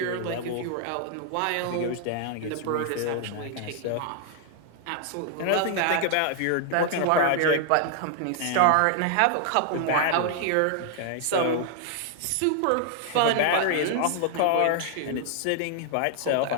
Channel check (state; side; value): different; both; correlation 0.00